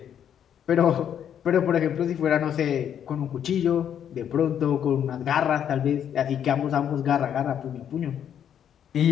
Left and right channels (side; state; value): right; quieter; 9.2 dB